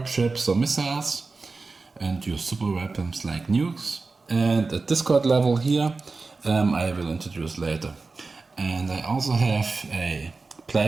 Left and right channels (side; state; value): left; quieter; 3.9 dB